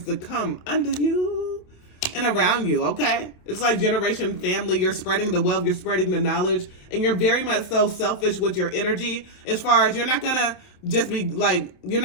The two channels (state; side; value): late; right; 27 ms